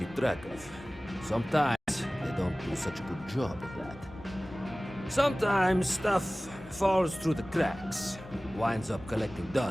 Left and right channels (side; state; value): both; normal; correlation 0.98